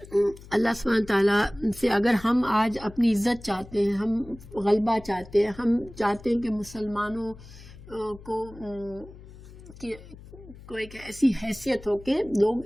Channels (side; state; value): left; noise; hum, 18 dB below the sound